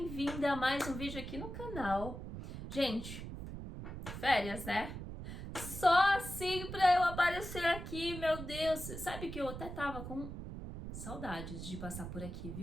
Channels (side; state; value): right; noise; rumble, 8 dB below the sound